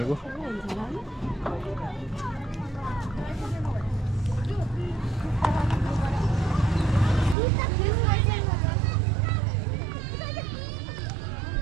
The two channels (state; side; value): drops out; left; at 7.4 s